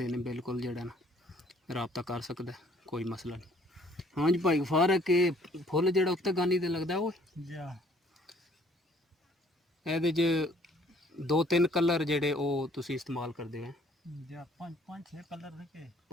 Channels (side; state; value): both; normal; correlation 0.60